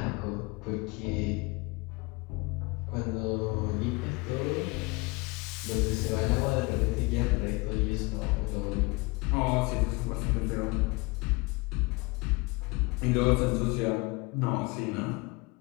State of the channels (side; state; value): right; quieter; 25.6 dB